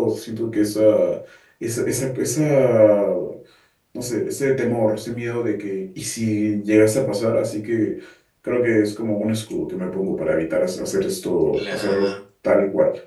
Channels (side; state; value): both; identical; correlation 1.00